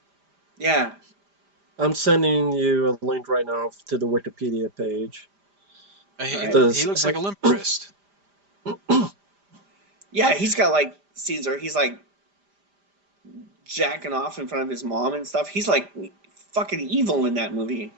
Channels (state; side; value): late; left; 5.0 ms